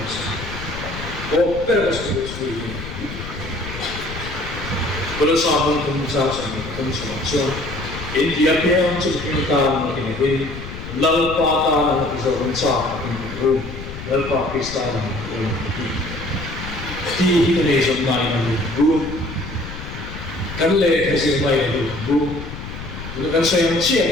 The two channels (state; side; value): noise; left; rumble, 10 dB below the sound